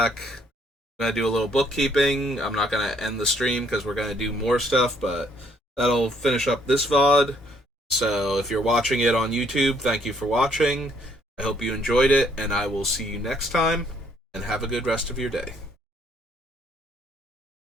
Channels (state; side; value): normal; both; correlation 0.66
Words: I'm going to do a little bookkeeping. I'm not going to end the stream because we're going to do more stuff, but that'll finish up this VOD. So if you're watching it on YouTube, thank you for watching. I hope you enjoyed it, and I will see you next time, and have a good rest of your day.